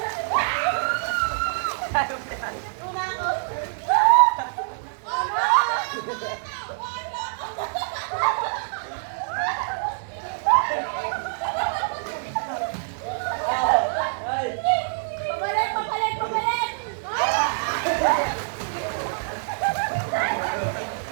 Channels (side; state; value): left; silent; digital silence